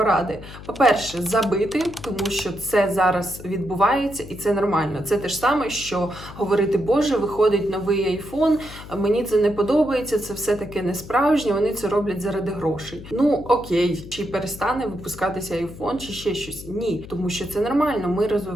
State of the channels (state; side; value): noise; left; hum, 15 dB below the sound